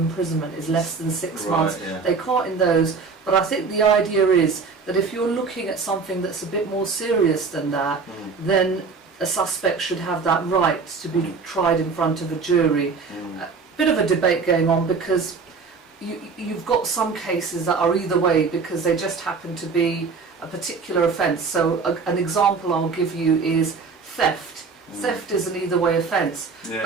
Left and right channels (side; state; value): left; quieter; 4.9 dB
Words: is less than 6 months, they can't in those. But I think the idea is that if you're looking at something that's a bit more serious than that, then a suspect should have that right to be tried in front of a jury. A bit of a debate going on because you've got some cases that are either way because they just happen to be a particular offence. So an example I'll give you is theft. Theft is an either way offence,